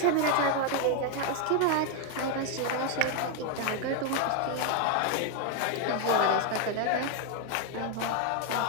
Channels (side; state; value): both; different; correlation 0.01